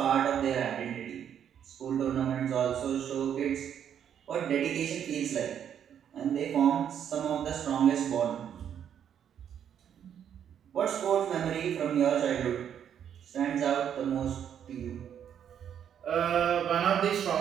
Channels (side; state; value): left; quieter; 9.0 dB